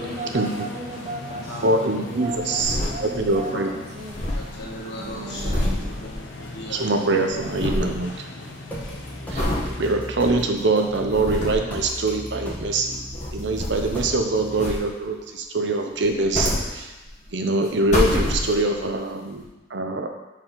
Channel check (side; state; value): both; normal; correlation 0.28